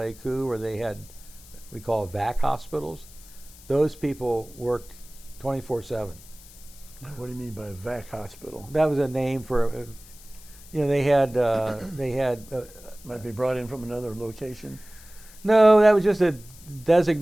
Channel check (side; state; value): left; noise; hiss, 21 dB below the sound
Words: where they had, we call VAC hospitals, those people worked 24/7. What do you mean by VAC hospital? That was a name for, they had Might be brought in from another location. No, that was just a